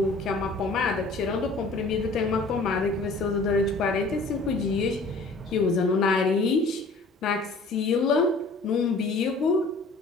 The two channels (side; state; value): right; quieter; 3.3 dB